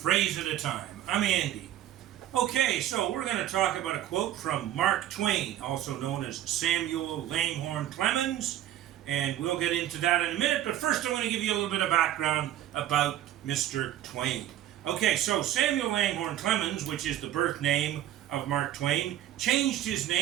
at a Time. I'm Andy. Okay, so we're going to talk about a quote from Mark Twain, also known as Samuel Langhorne Clemens, and we'll get into that in a minute, but first I want to give you a little bit of background about Mr. Twain. Okay, so Samuel Langhorne Clemens, which is the birth name of Mark Twain, changed his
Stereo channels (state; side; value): quieter; left; 12.3 dB